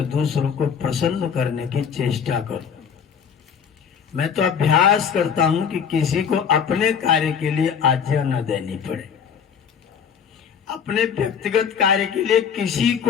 दूसरों को प्रसन्न करने की चेष्टा करो। मैं तो अभ्यास करता हूं कि किसी को अपने कार्य के लिए आज्ञा न देनी पड़े, अपने व्यक्तिगत कार्य के लिए किसी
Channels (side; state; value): right; quieter; 7.2 dB